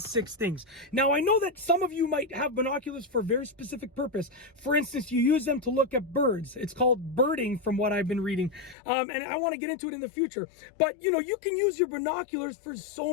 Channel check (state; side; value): drops out; right; at 8.8 s